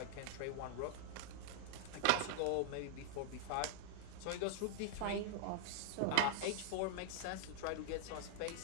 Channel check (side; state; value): both; different; correlation 0.00